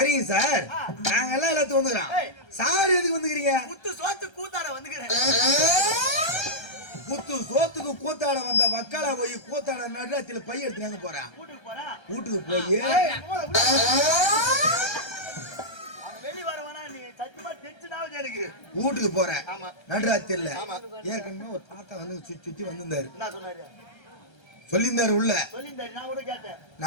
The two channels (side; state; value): right; late; 1.3 ms